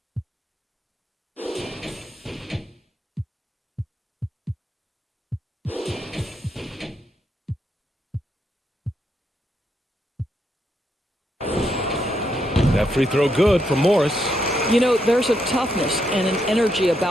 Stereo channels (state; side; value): normal; both; correlation 0.79